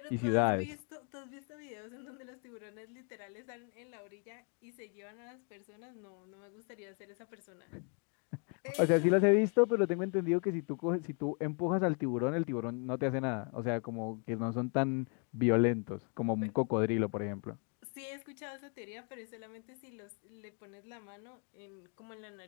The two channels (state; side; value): quieter; right; 38.8 dB